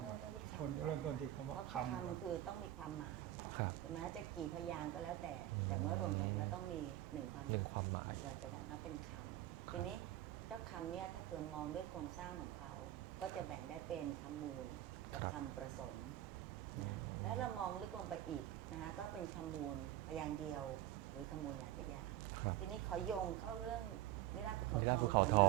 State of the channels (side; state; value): left; quieter; 13.8 dB